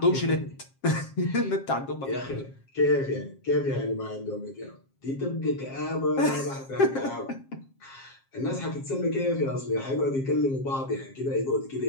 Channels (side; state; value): right; late; 7.5 ms